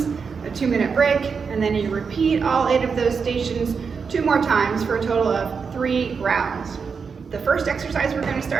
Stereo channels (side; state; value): left; quieter; 5.6 dB